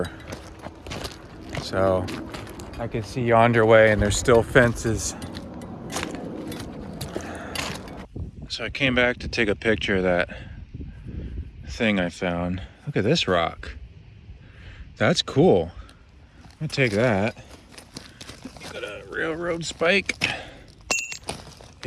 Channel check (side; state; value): both; identical; correlation 1.00